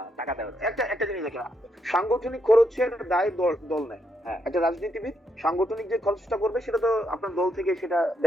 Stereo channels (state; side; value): normal; both; correlation 0.78